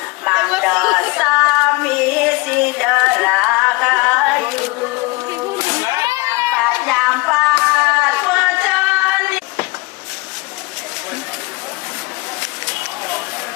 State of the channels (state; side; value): quieter; right; 24.1 dB